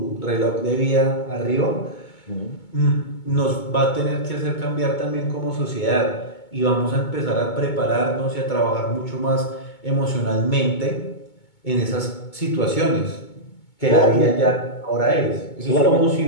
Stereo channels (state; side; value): late; right; 2.2 ms